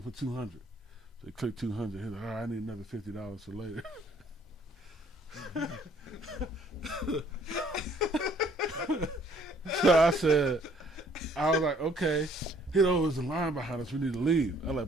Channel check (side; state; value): both; normal; correlation 0.61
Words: to put 200. So he clicked 200. He was like, all right, I need another $50 for later. So I was like, okay. There's a line behind us. We need to leave. I